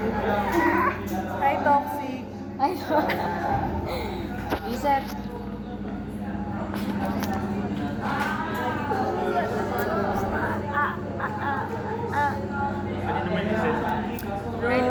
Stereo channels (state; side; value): identical; both; correlation 1.00